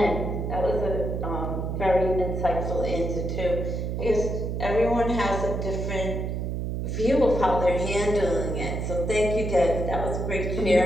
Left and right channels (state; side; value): noise; right; hum, 2 dB below the sound